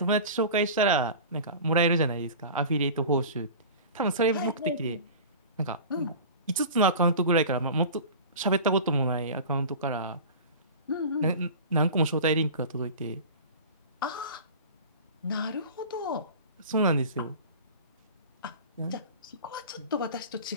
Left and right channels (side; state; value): both; inverted; correlation -0.36